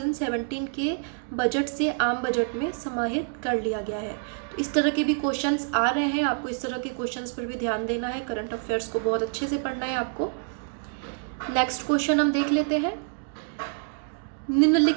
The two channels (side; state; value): left; silent; 60 dB below the other